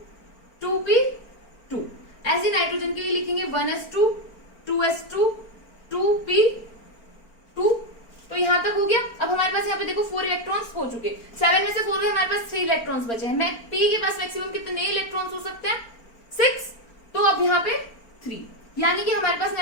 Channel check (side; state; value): right; late; 4.4 ms